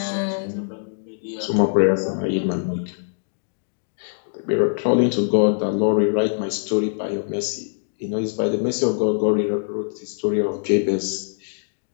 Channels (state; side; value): silent; right; digital silence